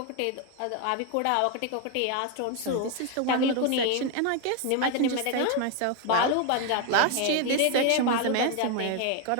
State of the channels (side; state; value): both; different; correlation 0.01